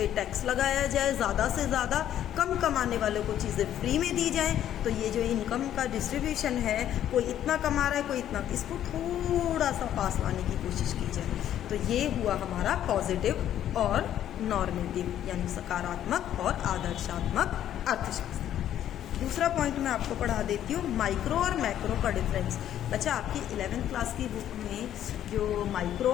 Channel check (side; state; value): right; quieter; 11.1 dB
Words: टैक्स लगाया जाए, ज़्यादा से ज़्यादा, कम कमाने वालों को चीज़ें फ्री में दी जाएं। तो ये जो इनकम का डिस्ट्रीब्यूशन है, कोई इतना कमा रहा है, कोई इतना, इसको थोड़ा सा पास लाने की कोशिश की जाए। तो ये हुआ हमारा पॉजिटिव और नॉर्मेटिव, यानी सकारात्मक और आदर्शात्मक अर्थशास्त्र। दूसरा पॉइंट मैं आपको पढ़ा देती हूँ, माइक्रो और मैक्रो का डिफरेंस। अच्छा, आपकी 11th क्लास की बुक में जो माइक्रो